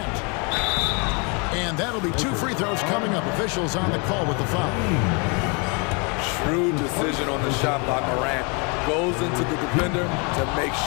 And that'll be 2 free throws coming up. Officials on the call with the foul. Shrewd decision on the shot by Morant. Goes into the defender to make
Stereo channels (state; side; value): quieter; right; 32.9 dB